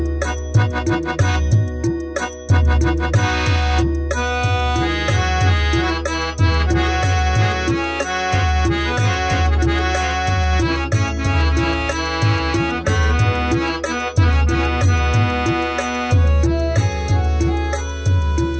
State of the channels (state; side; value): identical; both; correlation 1.00